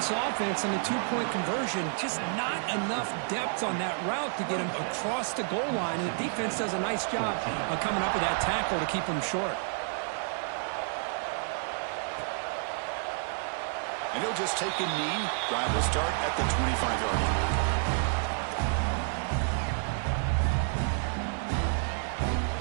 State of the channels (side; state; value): left; silent; 58 dB below the other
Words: offense on the 2-point conversion. Just not enough depth on that route to get him across the goal line. And the defense does a nice job of coming up with that tackle to keep him short. And he'll just take a knee. Drive will start at the 25-yard line.